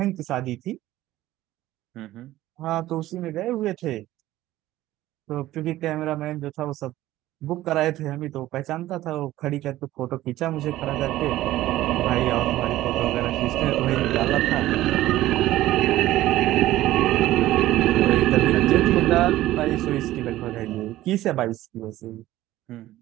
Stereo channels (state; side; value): quieter; left; 15.4 dB